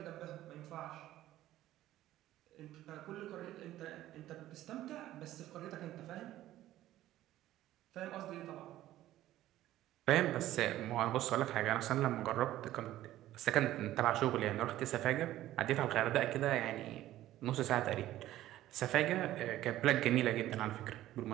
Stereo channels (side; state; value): left; quieter; 14.2 dB